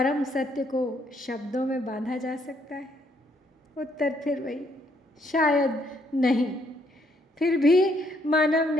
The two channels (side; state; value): both; normal; correlation 0.71